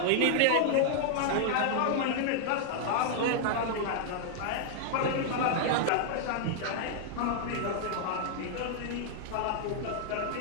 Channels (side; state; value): both; different; correlation -0.01